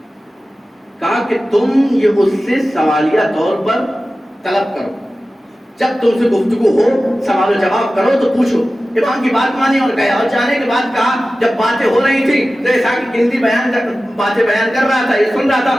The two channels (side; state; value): both; normal; correlation 0.95